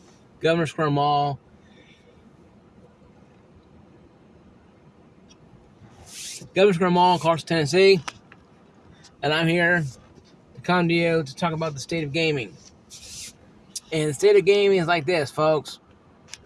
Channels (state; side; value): identical; both; correlation 1.00